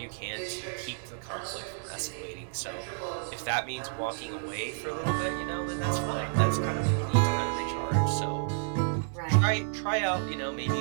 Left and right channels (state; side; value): silent; left; digital silence